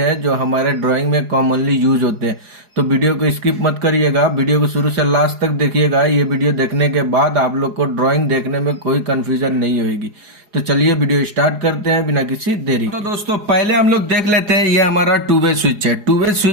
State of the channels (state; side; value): late; left; 4.8 ms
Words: जो हमारे ड्राइंग में कॉमनली यूज होते हैं। तो वीडियो को स्किप मत करिएगा, वीडियो को शुरू से लास्ट तक देखिएगा। ये वीडियो देखने के बाद आप लोग को ड्राइंग देखने में कोई कंफ्यूजन नहीं होगी। तो चलिए वीडियो स्टार्ट करते हैं बिना किसी देरी। तो दोस्तों पहले हम लोग देख लेते हैं, ये हमारा टू वे स्विच है। टू वे